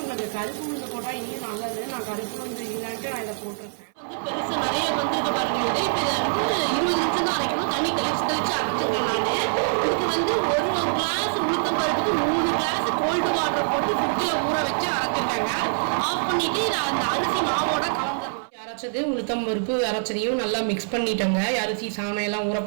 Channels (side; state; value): left; silent; 60 dB below the other